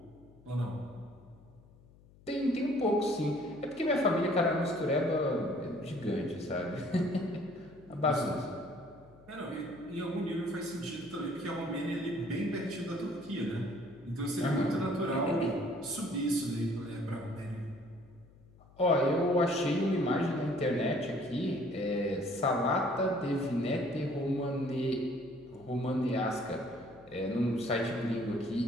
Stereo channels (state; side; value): noise; left; hum, 25 dB below the sound